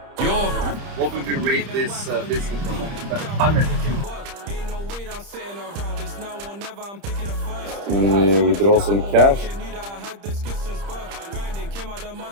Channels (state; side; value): late; left; 30 ms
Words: Yo, what would you rate this business from 100? And we withdraw some cash. Came out the